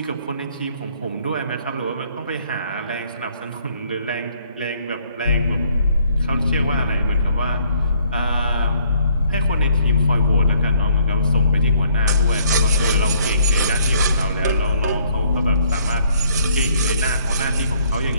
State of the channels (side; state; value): both; inverted; correlation -0.64